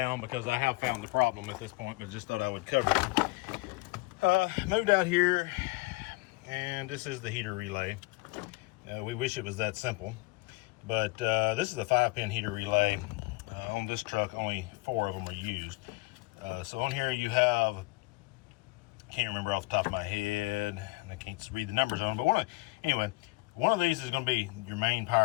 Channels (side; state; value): right; quieter; 23.6 dB